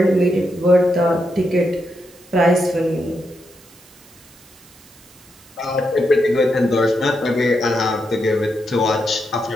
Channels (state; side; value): noise; right; hiss, 26 dB below the sound